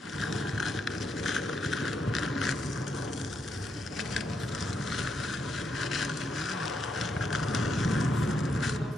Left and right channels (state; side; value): normal; both; correlation 0.80